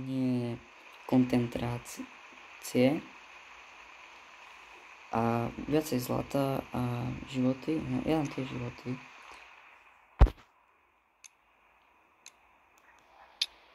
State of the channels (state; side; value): identical; both; correlation 1.00